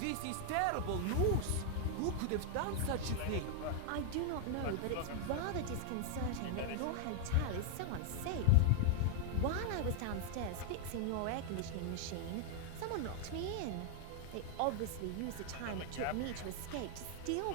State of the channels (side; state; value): both; different; correlation 0.00